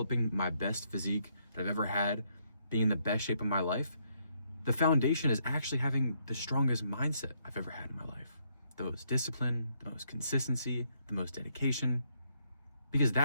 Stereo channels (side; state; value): both; inverted; correlation -0.73